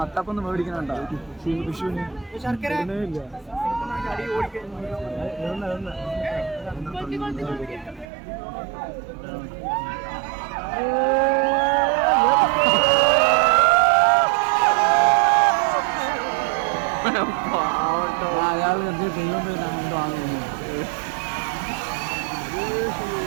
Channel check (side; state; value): left; drops out; at 8.1 s